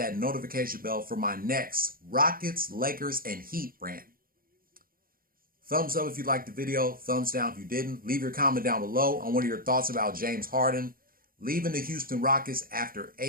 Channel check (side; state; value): left; late; 0.42 ms